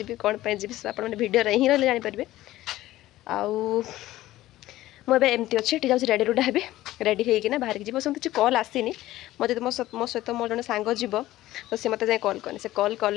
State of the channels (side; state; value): right; quieter; 15.7 dB